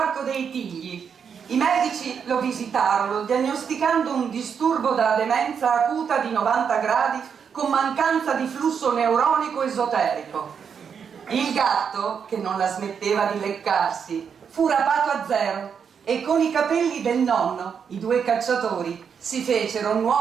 dei Tigli. I medici lo visitarono, diagnosticando un disturbo da demenza acuta di 90 gradi con mancanza di flusso neuronico esoterico. Il gatto, che non la smetteva di leccarsi, fu rapato a zero e con i capelli del nonno, i due cacciatori, si fecero un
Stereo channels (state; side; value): quieter; left; 7.0 dB